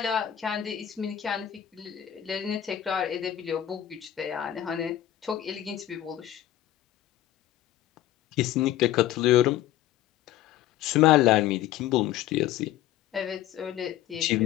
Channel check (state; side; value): quieter; right; 12.5 dB